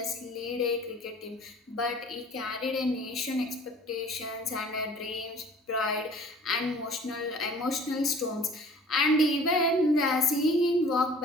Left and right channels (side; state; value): both; normal; correlation 0.49